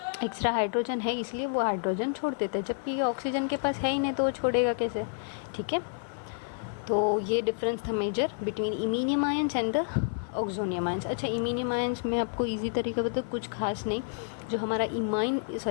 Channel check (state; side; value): silent; right; 58 dB below the other